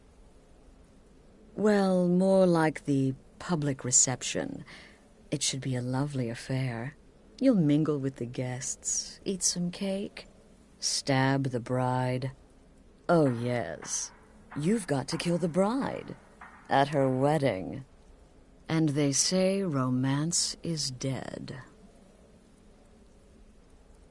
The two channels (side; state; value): both; identical; correlation 1.00